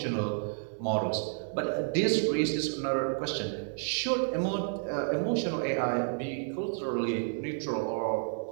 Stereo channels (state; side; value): silent; left; 57 dB below the other